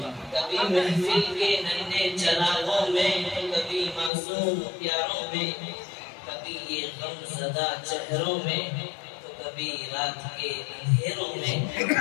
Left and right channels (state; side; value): drops out; right; at 4.1 s